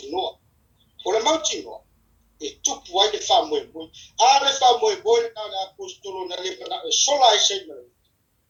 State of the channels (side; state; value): both; identical; correlation 1.00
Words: o le mautinoa e tupu ai le fa'amoemoe a le fa'amoemoe na le apostolo na le mana e sola ai sei mai